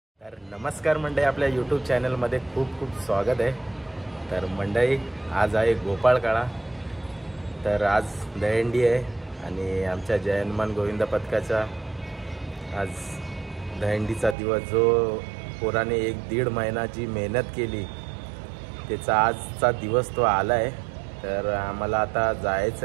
तर नमस्कार मंडळी, आपल्या यूट्यूब चॅनलमध्ये खूप खूप स्वागत आहे। तर मंडळी, आज आहे गोपाळकाळा। तर आज दहीहंडी आहे आणि आमच्या जय हनुमान गोविंद पथकाचा आज दहीहंडीचा दिवस, जो पोराने 1-1.5 महिना जी मेहनत केली त्याचा आजचा दिवस तो आला आहे। तर आम्हाला आता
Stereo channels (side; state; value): left; drops out; at 14.4 s